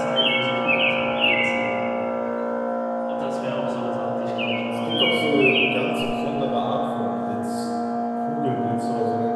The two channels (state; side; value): identical; both; correlation 1.00